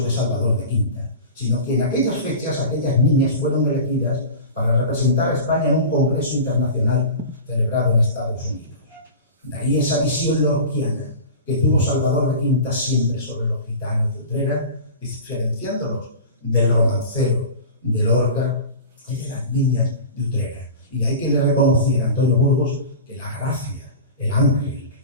de Salvador de Quinta, sino que en aquellas fechas aquellas niñas fueron elegidas para representar a España en un congreso internacional celebrado en Estados Unidos. De ahí esa visión lorquiana que tuvo Salvador de Quinta siempre sobre los gitanos de Utrera, diferenciándolos del romancero de Lorca y de las niñas de Utrera. Y de ahí que le reconociera a Antonio Burgos que la gracia, el ángel,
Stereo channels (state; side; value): inverted; both; correlation -0.34